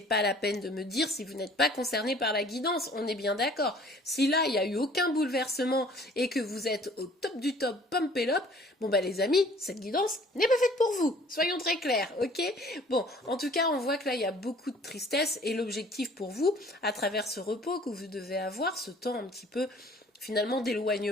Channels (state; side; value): normal; both; correlation 0.53